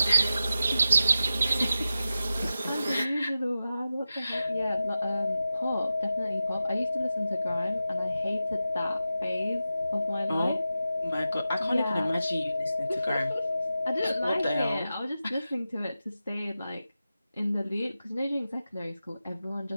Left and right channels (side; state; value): both; inverted; correlation -0.92